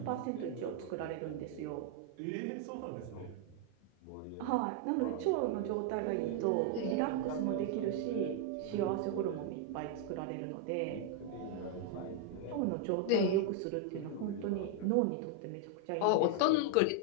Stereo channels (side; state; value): both; different; correlation 0.00